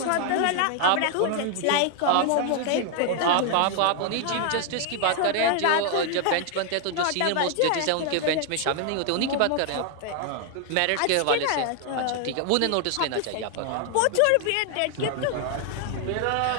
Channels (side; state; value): both; different; correlation 0.00